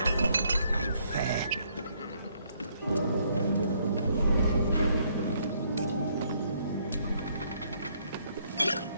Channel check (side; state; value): both; inverted; correlation -0.69